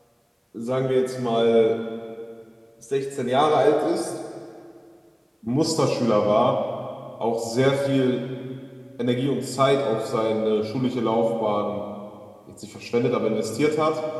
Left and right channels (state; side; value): identical; both; correlation 1.00